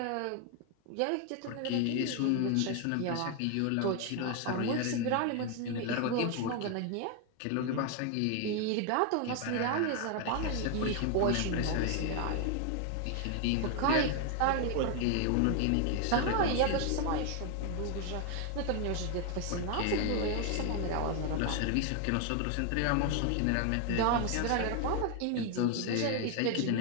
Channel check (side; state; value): both; different; correlation 0.00